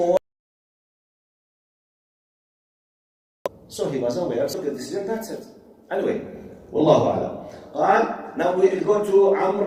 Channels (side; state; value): both; identical; correlation 1.00